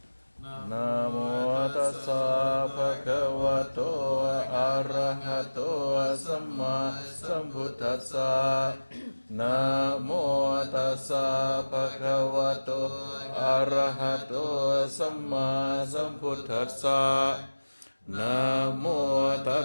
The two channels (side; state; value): both; inverted; correlation -1.00